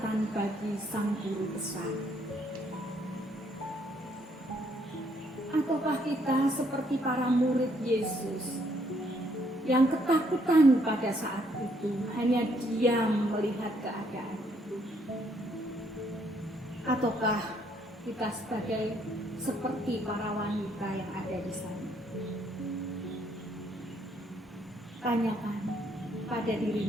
bagi sang guru besar? Ataukah kita seperti para murid Yesus yang ketakutan pada saat itu, hanya diam melihat keadaan itu? Ataukah kita sebagai seperti para wanita yang ada di sana? Tanyakan pada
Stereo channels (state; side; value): normal; both; correlation 0.69